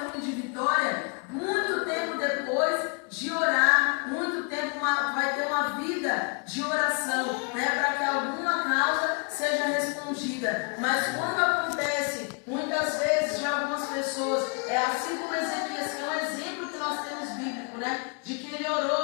de vitória muito tempo depois de orar, muito tempo vai ter uma vida de oração, né, para que alguma causa seja respondida. Mas quando acontece, muitas vezes, de algumas pessoas, é assim como Ezequias, que é um exemplo que nós temos bíblico, né, de que ele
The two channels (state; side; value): quieter; right; 37.6 dB